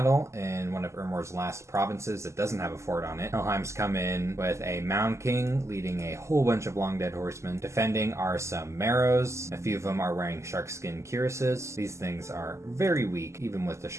in one of Ermor's last provinces that doesn't have a fort on it. Helheim's come in with a Mound King leading a whole bunch of long dead horsemen. Defending are some Marrows. A few of them are wearing sharkskin cuirasses. These things are very weak, even with the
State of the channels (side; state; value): left; late; 0.13 ms